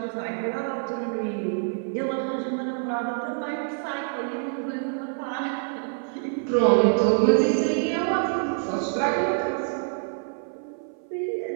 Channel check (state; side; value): silent; left; 57 dB below the other